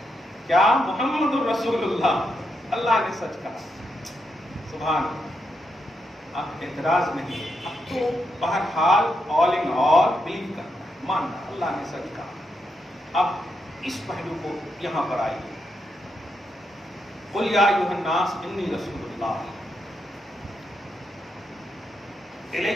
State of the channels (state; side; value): normal; both; correlation 0.83